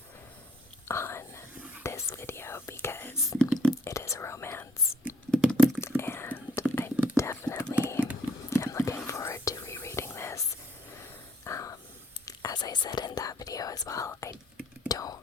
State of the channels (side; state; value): both; normal; correlation 0.65